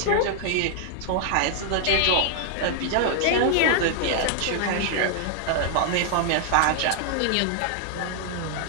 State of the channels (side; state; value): both; different; correlation 0.00